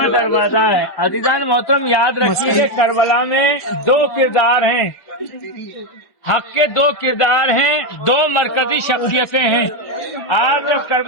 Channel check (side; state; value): right; late; 1.1 ms